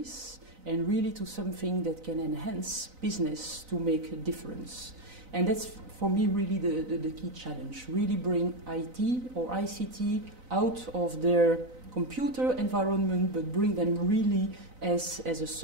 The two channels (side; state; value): left; late; 4.0 ms